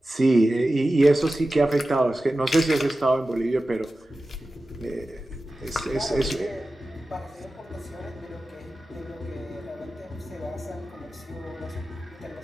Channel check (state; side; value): normal; both; correlation 0.94